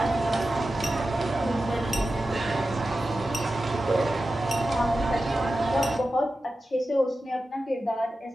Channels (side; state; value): both; normal; correlation 0.93